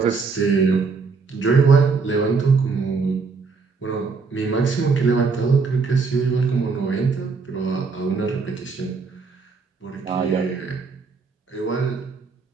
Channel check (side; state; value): left; quieter; 4.7 dB